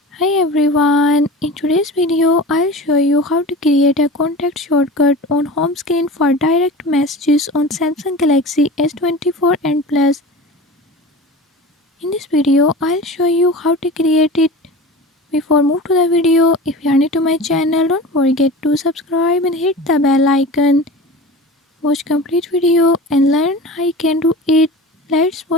Hi everyone, in today's video I'll show you how to create a contact shortcut on home screen for direct messages on Samsung Galaxy S24 and Plus. In this video I'll show you how to create it. Before move to the video, if you are new to my channel, don't forget to subscribe and hit the bell icon. Watch complete video and learn how you can do it. Let's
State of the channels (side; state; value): both; normal; correlation 0.34